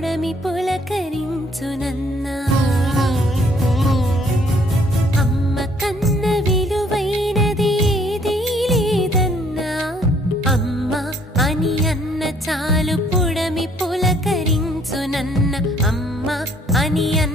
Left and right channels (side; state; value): both; normal; correlation 0.63